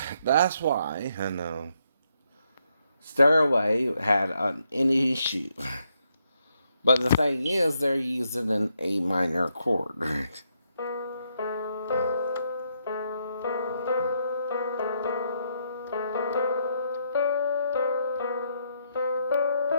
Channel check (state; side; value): inverted; both; correlation -0.77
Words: That's why, I know, Stairway had an issue. But the thing is, they're using an A minor chord.